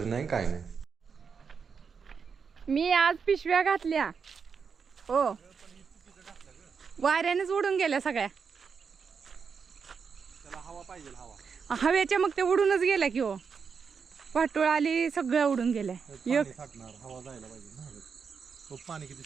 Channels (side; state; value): left; quieter; 6.0 dB